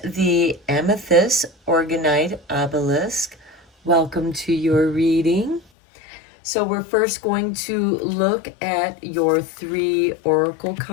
the Amethyst Orgonite Obelisk, welcome to your reading. So we're first going to look at your 3 oracle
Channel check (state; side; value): drops out; right; at 5.6 s